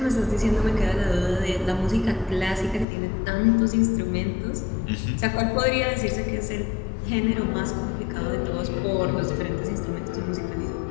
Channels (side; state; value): right; drops out; at 2.9 s